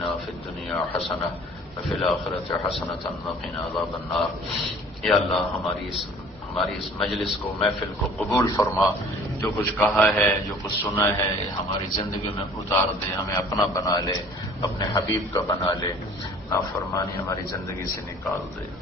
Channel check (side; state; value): both; normal; correlation 0.50